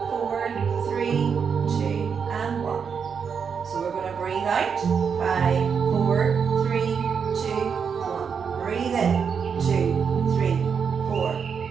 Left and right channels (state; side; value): quieter; left; 6.5 dB